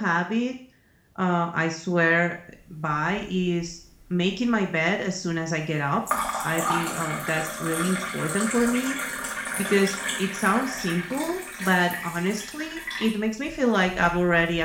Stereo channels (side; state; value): both; identical; correlation 1.00